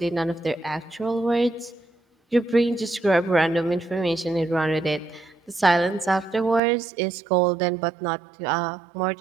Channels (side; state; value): left; drops out; at 6.6 s